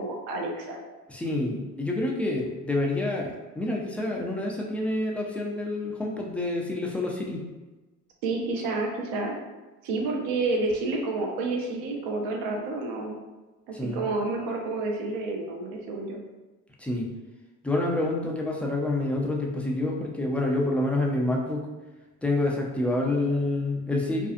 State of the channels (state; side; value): normal; both; correlation 0.53